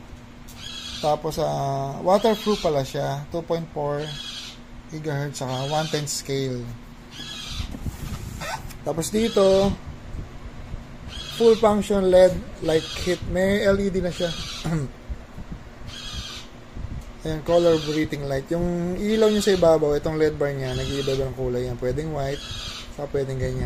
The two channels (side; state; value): both; identical; correlation 1.00